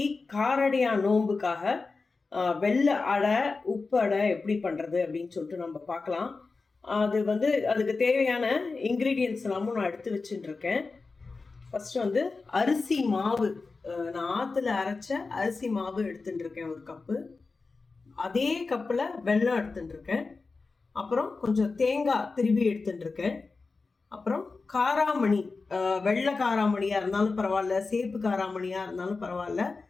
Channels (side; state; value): right; quieter; 4.1 dB